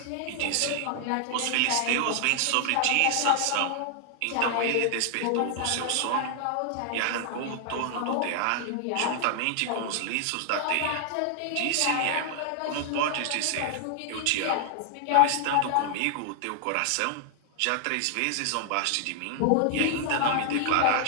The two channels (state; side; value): different; both; correlation 0.00